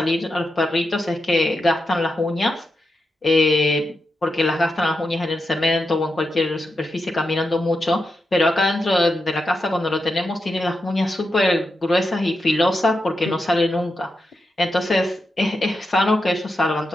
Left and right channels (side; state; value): both; normal; correlation 0.87